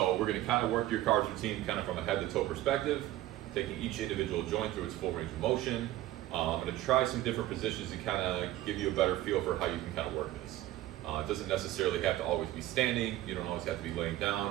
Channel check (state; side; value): quieter; left; 15.2 dB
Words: we're gonna kind of work your car's routine kind of from a head to toe perspective, taking each individual joint through its full range of motion. I'm gonna try some different positions to kind of give you a better feel for how you can kind of work this. It doesn't necessarily have to always be standing, you don't always have to be laying